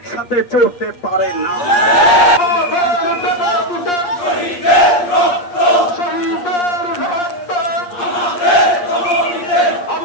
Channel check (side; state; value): right; late; 8.5 ms